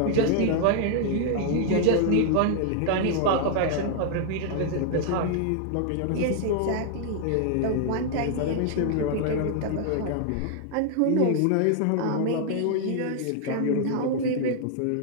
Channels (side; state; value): both; different; correlation -0.01